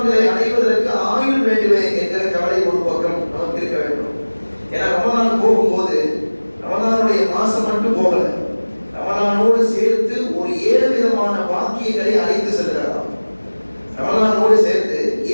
அடைவதற்கு ஆயுள் வேண்டுமே என்கிற கவலை ஒரு பக்கம் நமக்கு இருக்க வேண்டும். ஏன்னா ரமலான் போகும்போது ரமலானுடைய மாசம் மட்டும் போகல, ரமலானோடு சேர்த்து ஒரு 7 விதமான வாக்கியங்களை அழைத்து செல்கிறாராம். ரமலானோடு சேர்த்து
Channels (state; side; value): inverted; both; correlation -1.00